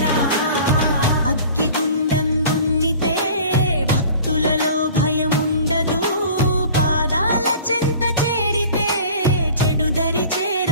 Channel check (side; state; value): both; inverted; correlation -0.44